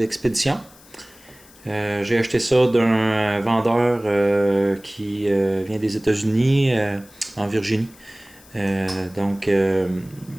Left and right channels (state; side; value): noise; left; hiss, 25 dB below the sound